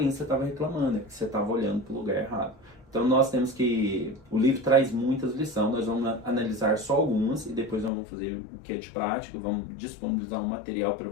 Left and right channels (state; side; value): drops out; right; at 7.9 s